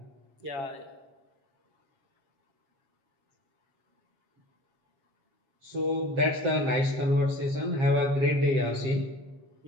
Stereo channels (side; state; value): left; late; 7.5 ms